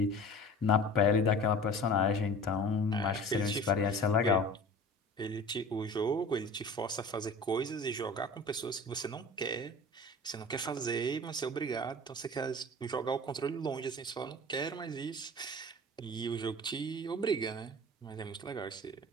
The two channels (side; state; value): both; normal; correlation 0.40